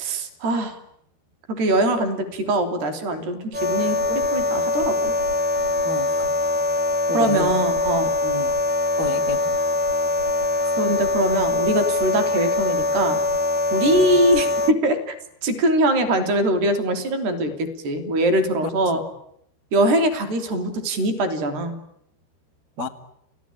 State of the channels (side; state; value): left; late; 13 ms